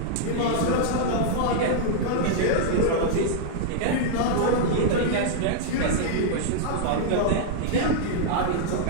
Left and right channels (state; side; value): different; both; correlation -0.01